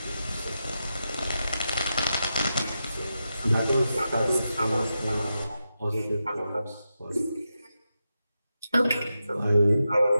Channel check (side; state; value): both; inverted; correlation -0.89